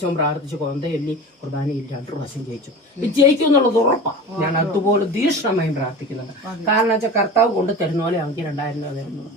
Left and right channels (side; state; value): both; normal; correlation 0.34